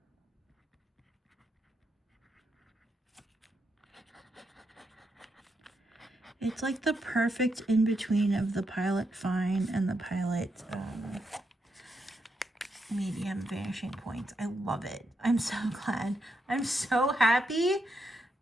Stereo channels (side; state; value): both; normal; correlation 0.82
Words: It's like the perfect in-between of the Pilot Fine and the Pilot medium Vanishing Points. I love it. I'm so glad. I'm so happy